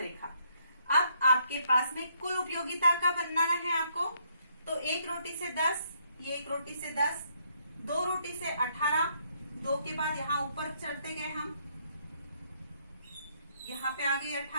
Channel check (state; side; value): inverted; both; correlation -0.70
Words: अब आपके पास में कुल उपयोगिता का बनाना है आपको। तो 1 रोटी से 10, ये 1 रोटी से 10, 2 रोटी से 18, 2 के बाद यहाँ ऊपर चढ़ते गए हम, यहाँ पे आ गई